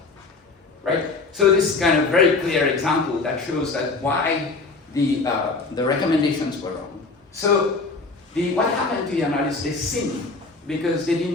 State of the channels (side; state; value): right; quieter; 3.9 dB